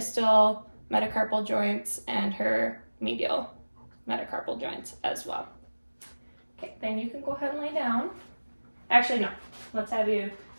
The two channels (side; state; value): both; inverted; correlation -1.00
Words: metacarpal joints and her medial metacarpal joints as well. Okay, then you can go ahead and lay down. Actually, no. Let's have you